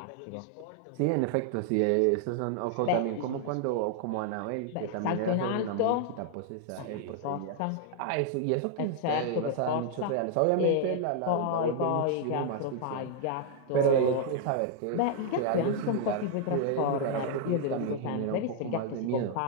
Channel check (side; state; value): both; different; correlation 0.00